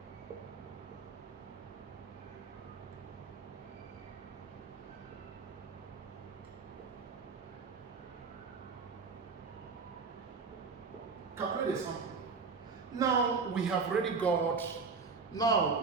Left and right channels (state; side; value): quieter; left; 4.9 dB